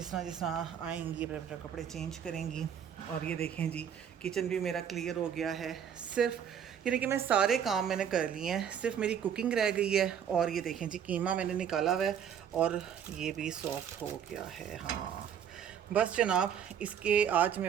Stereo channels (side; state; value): left; quieter; 8.6 dB